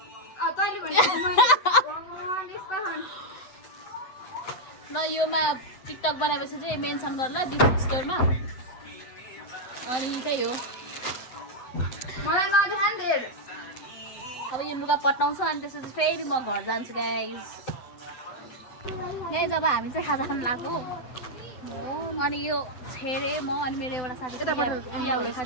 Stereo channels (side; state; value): right; late; 7.9 ms